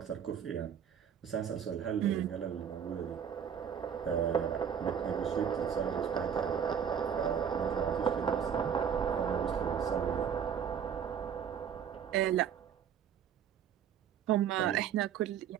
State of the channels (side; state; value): left; quieter; 8.1 dB